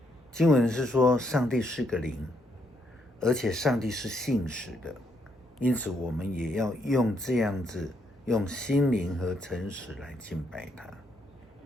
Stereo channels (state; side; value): normal; both; correlation 0.75